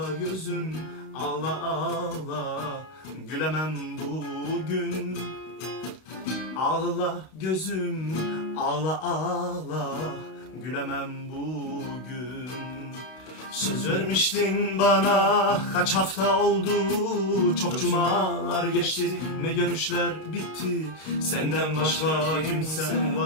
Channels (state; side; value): late; right; 32 ms